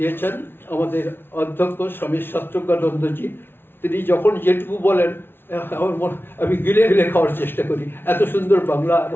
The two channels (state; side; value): late; right; 0.11 ms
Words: আমাদের অধ্যক্ষ স্বামী শাস্ত্রজ্ঞানন্দজি। তিনি যখন যেটুকু বলেন আমি গিলে গিলে খাওয়ার চেষ্টা করি। এত সুন্দর বাংলা